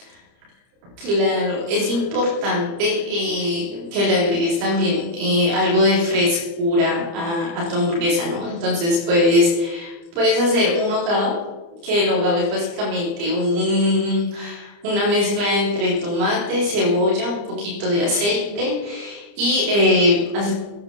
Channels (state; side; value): late; left; 30 ms